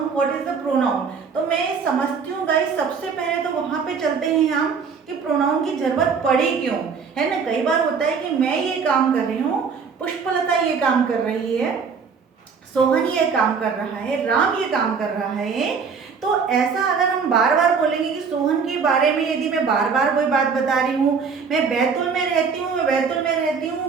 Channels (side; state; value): left; quieter; 5.7 dB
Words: what is the pronoun? तो मैं समझती हूँ guys, सबसे पहले तो वहाँ पे चलते हैं हम कि प्रोनाउन की जरूरत पड़ी क्यों, है ना। कई बार होता है कि मैं ये काम कर रही हूँ, पुष्पलता ये काम कर रही है, सोहन ये काम कर रहा है, राम ये काम कर रहा है। तो ऐसा अगर हम बार बार बोलेंगे कि सोहन के बारे में, यदि मैं बार बार कोई बात बता रही हूँ, मैं बैतूल में रहती हूँ, मैं बैतूल में रहती